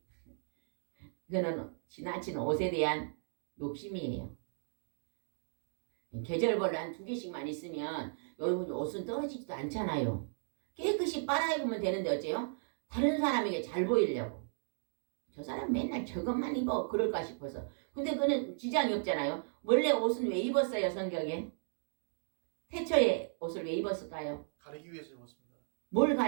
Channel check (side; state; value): left; silent; digital silence